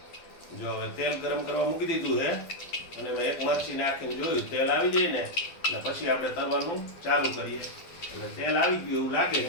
જો હવે તેલ ગરમ કરવા મૂકી દીધું છે અને મેં એક મરચી નાખીને જોયું તેલ આવી જાય ને એટલે પછી આપણે તરવાનું ચાલુ કરીએ। એટલે તેલ આવી ગયું એવું લાગે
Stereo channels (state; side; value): late; right; 12 ms